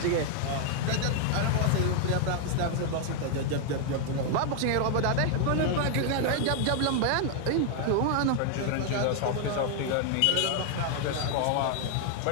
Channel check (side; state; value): both; different; correlation 0.00